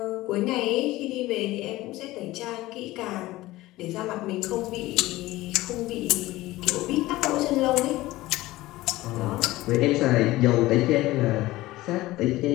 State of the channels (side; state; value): right; quieter; 17.9 dB